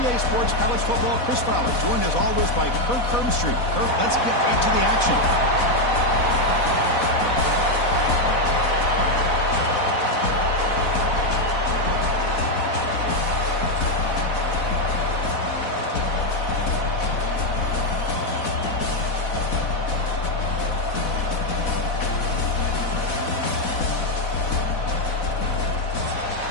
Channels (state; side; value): late; right; 4.1 ms